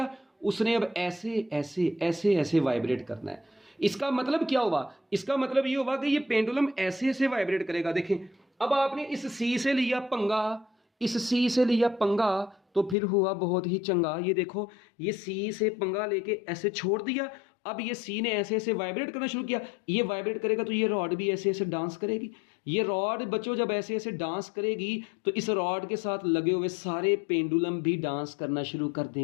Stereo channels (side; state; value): right; drops out; at 13.0 s